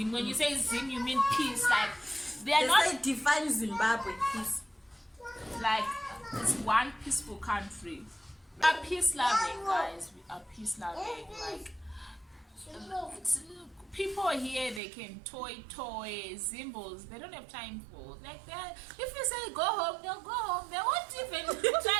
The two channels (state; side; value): drops out; left; at 14.8 s